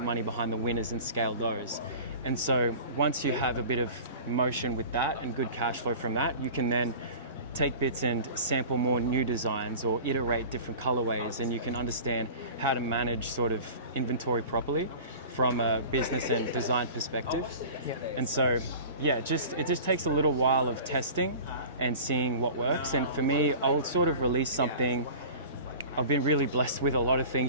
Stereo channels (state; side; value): inverted; both; correlation -0.39